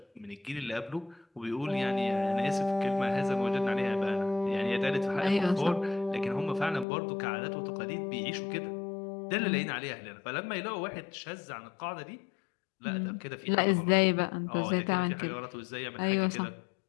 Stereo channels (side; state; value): right; drops out; at 6.9 s